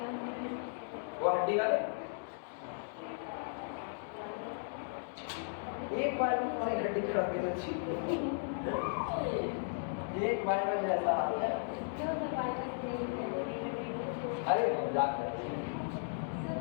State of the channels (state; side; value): silent; right; digital silence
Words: वो हड्डी वाले एक बार में तुम्हारी हड्डी खड़ा के तो ठीक एक बार में जैसा हाल है अरे मजाक कर